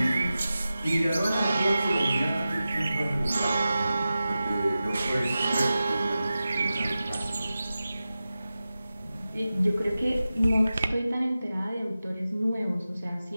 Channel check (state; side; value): inverted; both; correlation -0.94